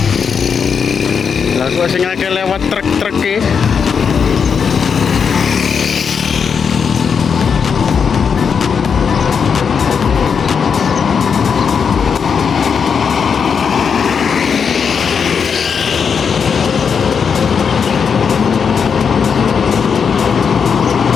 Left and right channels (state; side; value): quieter; right; 6.4 dB